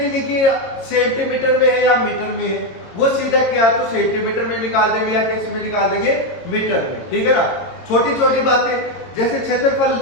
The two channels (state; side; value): late; right; 22 ms